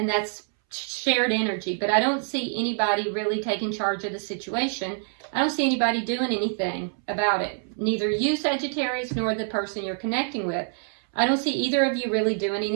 that's shared energy, but I don't see anybody really taking charge of the situation. I don't see anybody doing anything about it. Neither you, Sagittarius, nor the person you're connecting with. I don't see either of you really doing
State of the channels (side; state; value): left; silent; 61 dB below the other